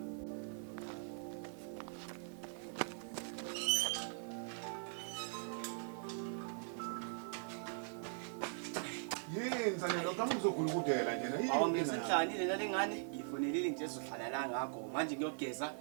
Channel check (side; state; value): left; silent; 50 dB below the other